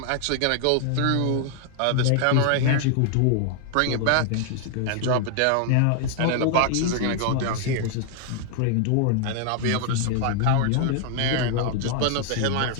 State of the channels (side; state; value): both; different; correlation 0.00